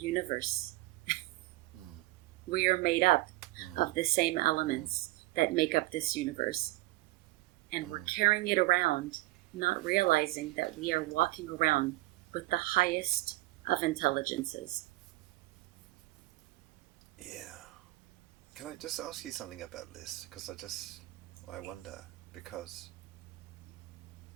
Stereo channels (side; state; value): left; quieter; 19.0 dB